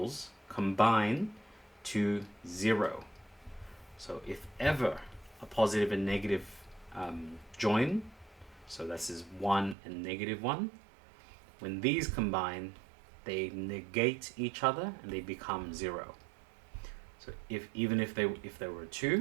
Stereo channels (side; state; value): left; drops out; at 9.8 s